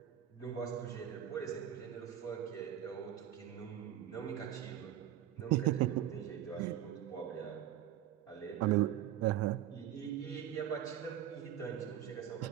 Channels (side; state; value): left; quieter; 11.2 dB